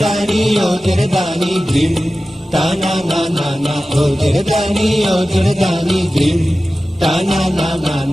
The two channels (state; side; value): normal; both; correlation 0.95